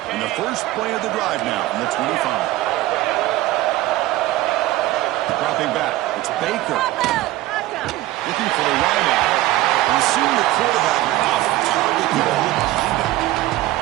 And the first play of the drive now from the 25. Dropping back. It's Baker. Looking for the wideout. And seeing the quarterback off target behind him.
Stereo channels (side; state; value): left; quieter; 16.5 dB